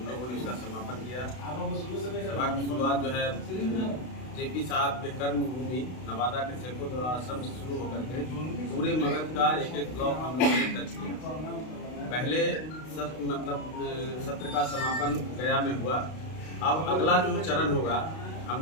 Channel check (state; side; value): late; right; 32 ms